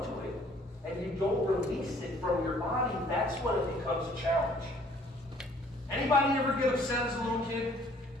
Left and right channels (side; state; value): both; normal; correlation 0.58